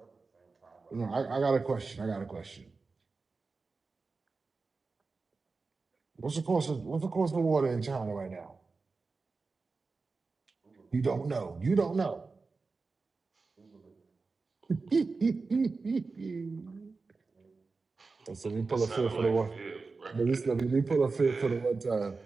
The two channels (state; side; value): quieter; left; 4.1 dB